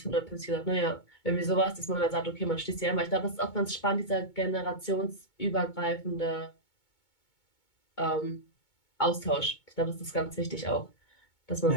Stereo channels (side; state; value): right; late; 2.2 ms